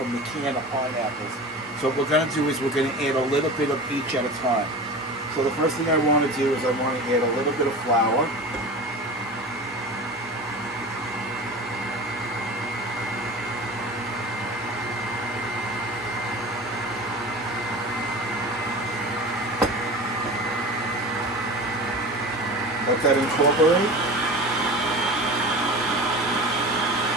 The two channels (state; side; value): normal; both; correlation 0.33